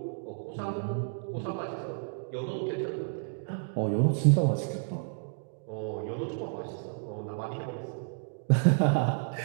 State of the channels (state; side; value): silent; left; digital silence